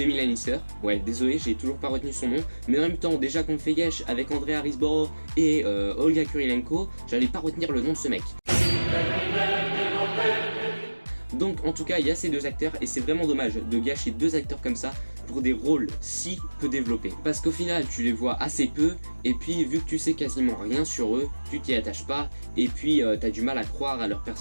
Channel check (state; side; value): inverted; both; correlation -1.00